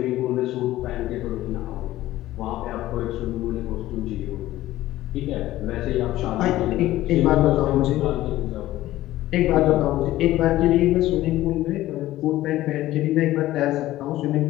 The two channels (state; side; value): quieter; right; 15.4 dB